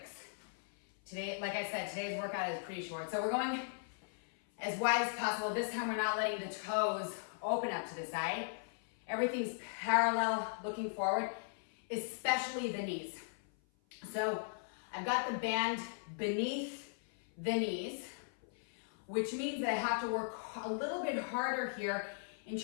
Today, like I said, today's workout is pretty short. So we're going as wide as possible. This time we're not letting the toes open up to the side. Everything's parallel, looking forward, especially the knees. So I've got the band beneath the knees, which means that I have to work a little bit harder here in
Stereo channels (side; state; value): right; silent; 52 dB below the other